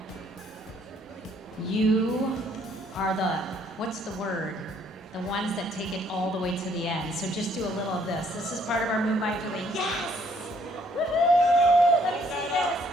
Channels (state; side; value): normal; both; correlation 0.65